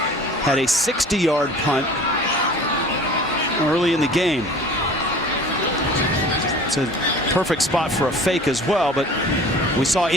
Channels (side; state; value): both; normal; correlation 0.44